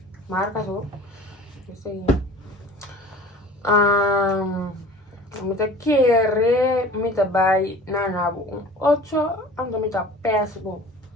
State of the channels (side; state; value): both; normal; correlation 0.43